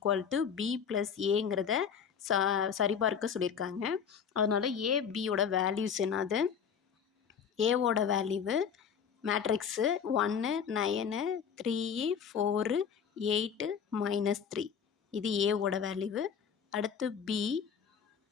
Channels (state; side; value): quieter; right; 7.2 dB